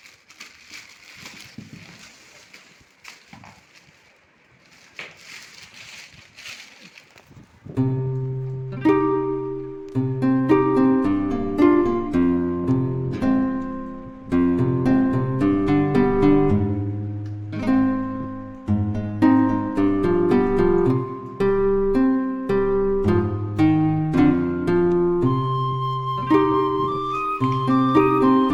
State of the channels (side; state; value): both; identical; correlation 1.00